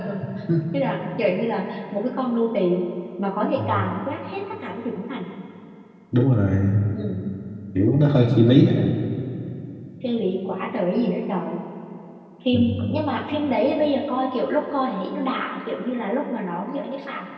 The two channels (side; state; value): both; identical; correlation 1.00